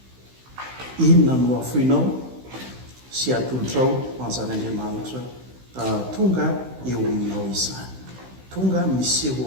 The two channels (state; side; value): late; left; 16 ms